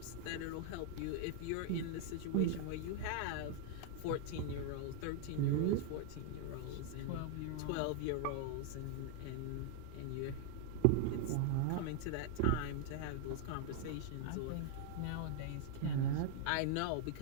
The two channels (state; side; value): different; both; correlation -0.01